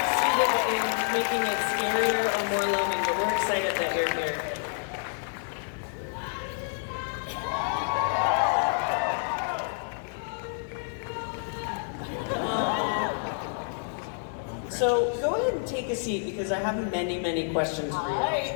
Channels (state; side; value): silent; right; 56 dB below the other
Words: in making it scarier or more loving, but we're excited that you're here. So go ahead and take a seat because I have many, many questions for you. All